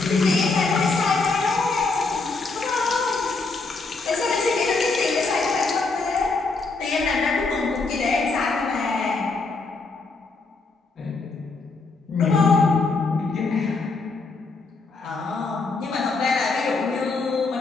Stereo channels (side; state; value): right; quieter; 3.9 dB